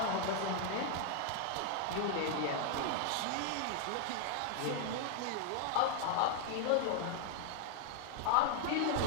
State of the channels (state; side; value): different; both; correlation 0.00